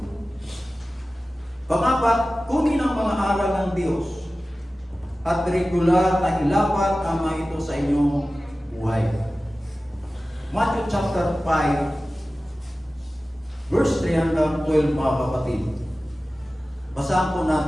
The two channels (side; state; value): both; normal; correlation 0.96